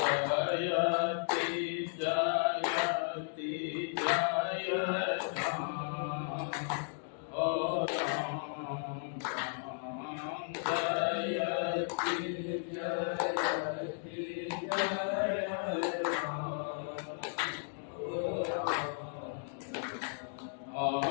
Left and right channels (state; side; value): silent; right; digital silence